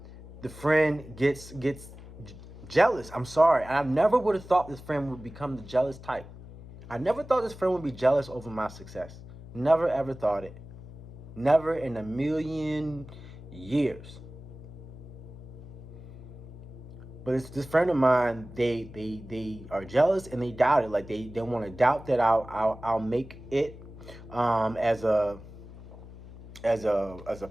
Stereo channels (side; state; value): left; noise; hum, 16 dB below the sound